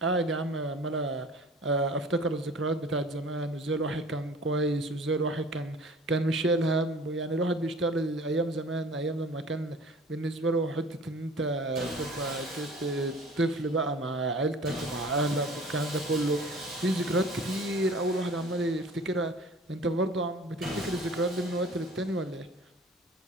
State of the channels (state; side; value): normal; both; correlation 0.45